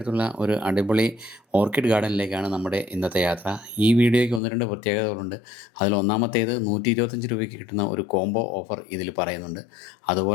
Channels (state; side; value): drops out; right; at 4.4 s